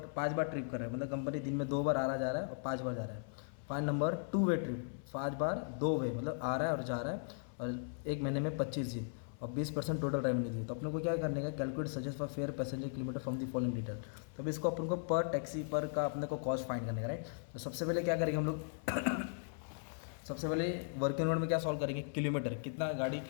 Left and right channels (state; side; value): silent; right; 53 dB below the other